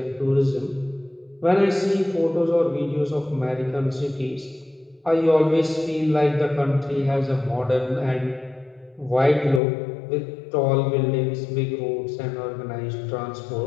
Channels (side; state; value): right; drops out; at 9.6 s